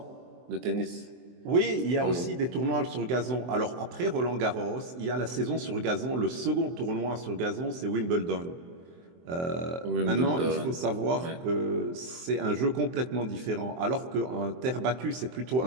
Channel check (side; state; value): left; late; 23 ms